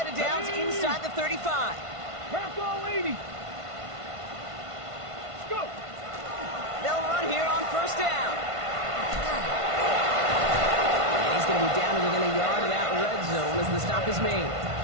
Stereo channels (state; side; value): late; left; 1.5 ms